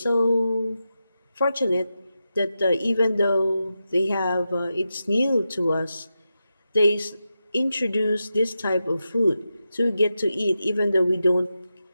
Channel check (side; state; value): both; inverted; correlation -0.90